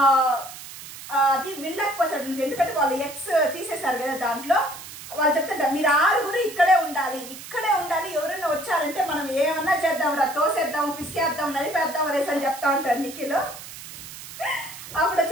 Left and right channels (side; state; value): right; noise; hiss, 13 dB below the sound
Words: అది వినలేకపోతాడు, ఎందుకంటే వాళ్ళు ఎక్స్ తీసేశారు కదా. దాంట్లో వాళ్ళు చెప్తారు మీరు 6 ఇక్కడే ఉండాలి, ఎవరైనా వచ్చారంటే మనం ఏమన్నా చేద్దాం రా, తోసేద్దాం, పిసికేద్దాం, నలిపేద్దాం అనేసి అని చెప్తా ఉంటాడు నిఖిల్. అప్పుడు